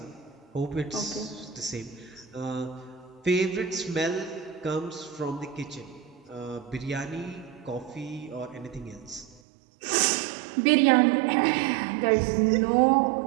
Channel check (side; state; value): left; drops out; at 9.4 s